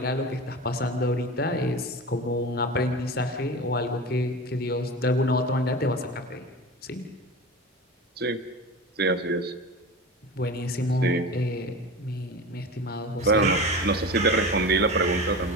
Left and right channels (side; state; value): both; normal; correlation 0.30